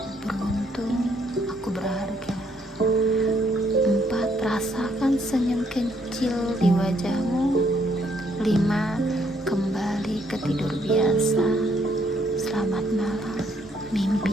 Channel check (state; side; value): normal; both; correlation 0.70